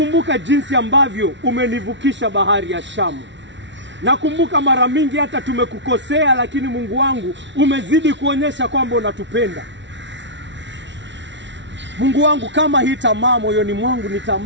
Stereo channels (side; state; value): left; late; 0.53 ms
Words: jinsi ambavyo umenivukisha bahari ya Shamu. Nakumbuka mara mingi hata tumekukosea, lakini Mungu wangu umezidi kuonyesha kwamba unatupenda. Mungu wangu, kama hii tamaa moyoni mwangu ni